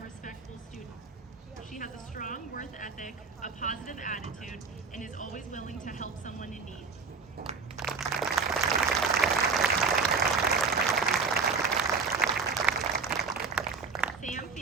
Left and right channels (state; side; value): quieter; left; 4.8 dB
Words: respectful student. She has a strong work ethic, a positive attitude, and is always willing to help someone in need. Sam